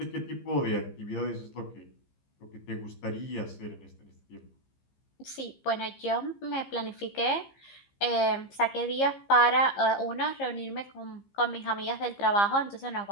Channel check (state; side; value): late; right; 15 ms